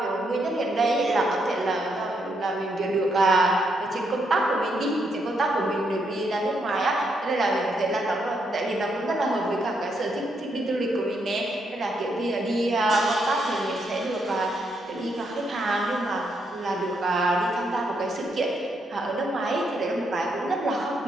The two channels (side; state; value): both; normal; correlation 0.77